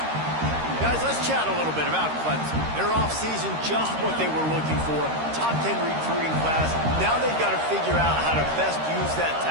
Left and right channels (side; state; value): left; late; 13 ms